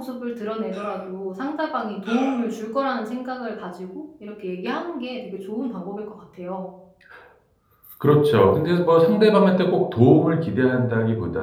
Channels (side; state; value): both; identical; correlation 1.00